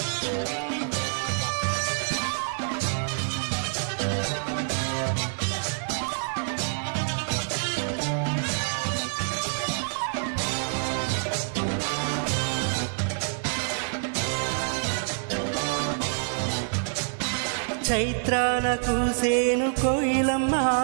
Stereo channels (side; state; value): left; silent; digital silence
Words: చైత్రాన కూసేను కోయిలమ్మ,